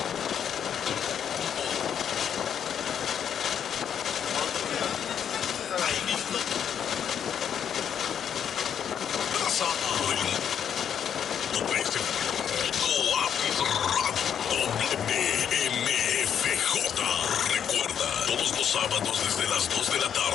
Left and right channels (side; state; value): right; quieter; 8.5 dB